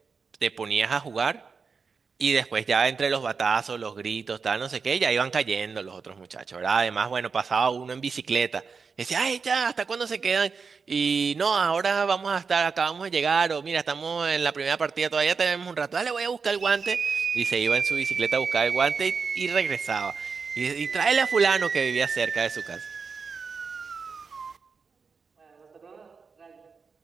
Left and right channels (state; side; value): quieter; left; 5.2 dB